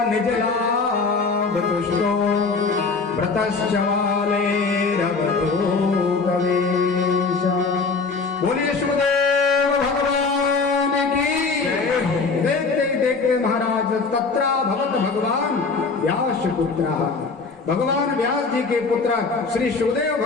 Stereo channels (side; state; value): right; quieter; 4.4 dB